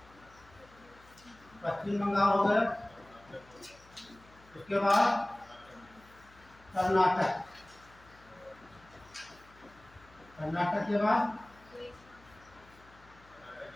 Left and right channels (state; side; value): noise; left; hum, 25 dB below the sound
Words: पश्चिम बंगाल हो गया। उसके बाद कर्नाटक, कर्नाटक के बाद